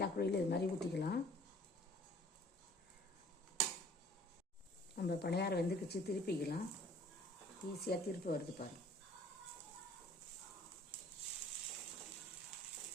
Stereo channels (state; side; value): normal; both; correlation 0.53